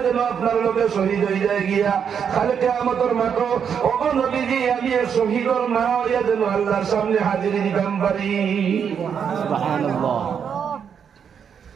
যেন আপনার লোকে শহীদ হয়ে যায় গিয়া খালে কিয়ামতের মাঠে ও গো নবীজি আমি এক শহীদের মা হইয়া যেন আল্লাহর সামনে হাজিরি দিতাম পারি সুবহানাল্লাহ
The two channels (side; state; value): left; quieter; 7.5 dB